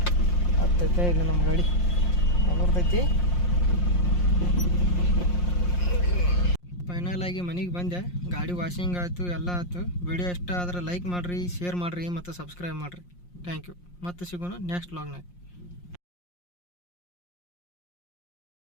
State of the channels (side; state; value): right; late; 5.6 ms